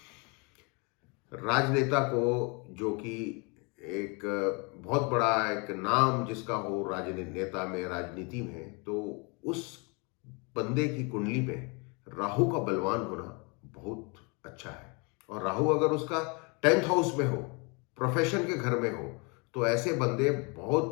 राजनेता को, जो कि एक बहुत बड़ा एक नाम जिसका हो राजनेता में, राजनीति में, तो उस बंदे की कुंडली में राहु का बलवान होना बहुत अच्छा है। और राहु अगर उसका 10th हाउस में हो, प्रोफेशन के घर में हो, तो ऐसे बंदे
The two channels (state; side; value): quieter; right; 31.4 dB